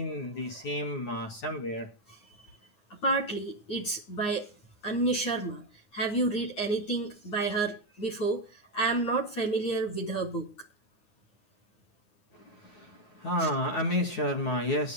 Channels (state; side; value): late; right; 9.6 ms